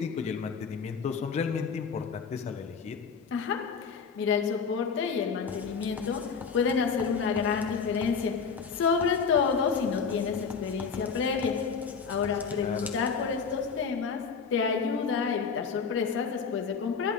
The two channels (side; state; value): right; quieter; 5.8 dB